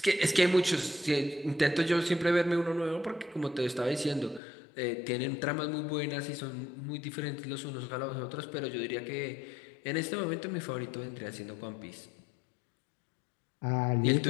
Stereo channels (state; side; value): drops out; right; at 4.4 s